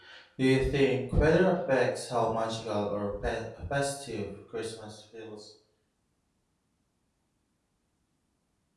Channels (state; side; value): identical; both; correlation 1.00